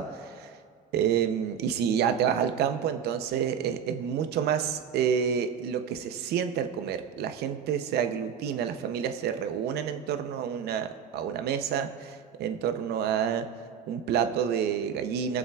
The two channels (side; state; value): left; quieter; 7.8 dB